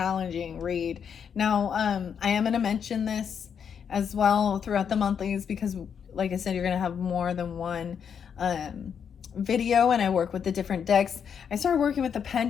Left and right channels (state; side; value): quieter; right; 7.4 dB